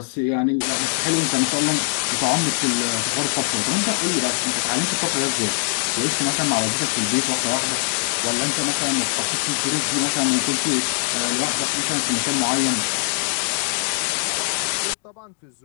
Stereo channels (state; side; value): silent; right; digital silence